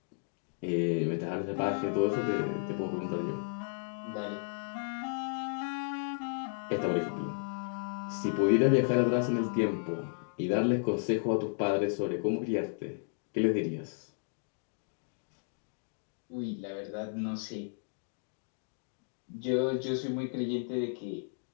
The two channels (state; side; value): silent; right; digital silence